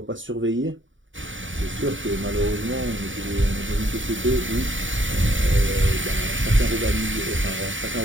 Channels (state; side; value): late; left; 0.56 ms